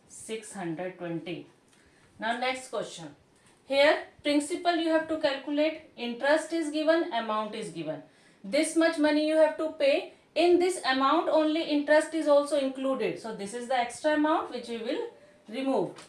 620. Now next question. Here principal you have to calculate. Interest is given, amount is given. This much money you have to pay. In this amount only interest is also included. So this is the extra amount which we will remove.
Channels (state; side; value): identical; both; correlation 1.00